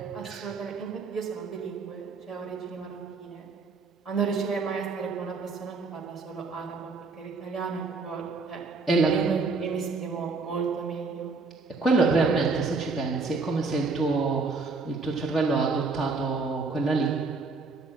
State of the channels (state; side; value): quieter; left; 4.1 dB